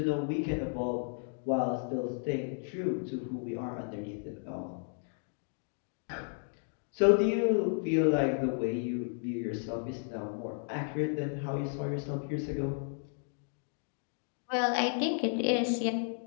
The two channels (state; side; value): silent; right; 55 dB below the other